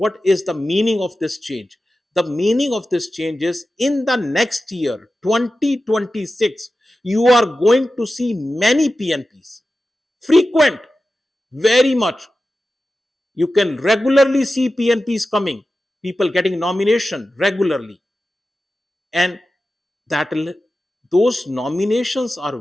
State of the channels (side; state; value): both; normal; correlation 0.93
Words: is the meaning of this change? The meaning of this change is in the next year, 2026, you are going to see many PNPs. Frequent, very much. You can regularly see PNPs coming, people getting nomination regularly. And that will, those nominations are